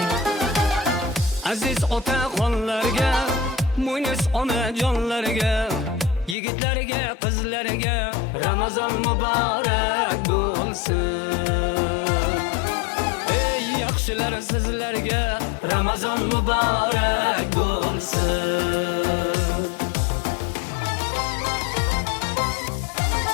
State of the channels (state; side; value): drops out; right; at 6.4 s